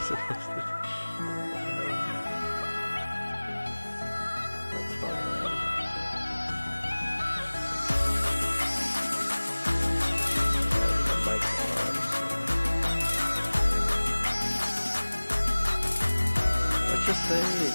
supposed to do? That's funny, man. The mic's on. Let's just say,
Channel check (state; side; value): inverted; both; correlation -1.00